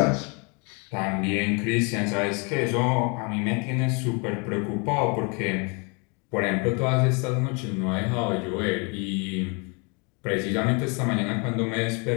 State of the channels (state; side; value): quieter; right; 32.7 dB